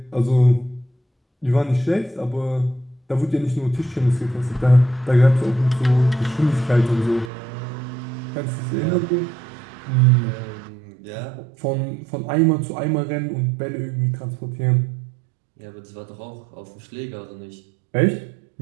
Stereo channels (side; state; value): left; drops out; at 7.3 s